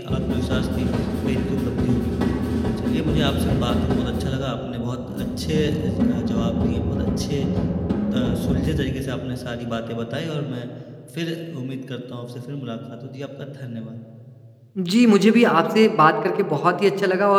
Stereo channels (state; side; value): identical; both; correlation 1.00